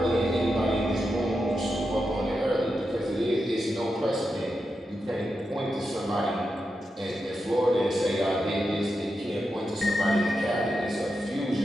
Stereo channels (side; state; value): both; normal; correlation 0.88